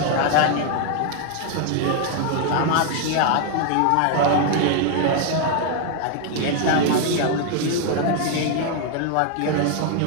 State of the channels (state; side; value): different; both; correlation 0.00